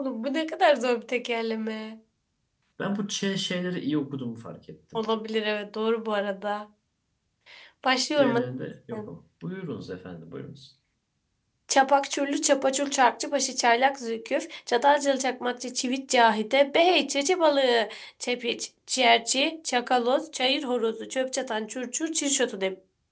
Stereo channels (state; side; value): identical; both; correlation 1.00